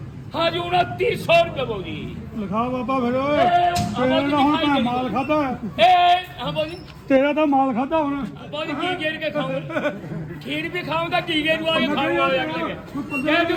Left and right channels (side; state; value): both; identical; correlation 1.00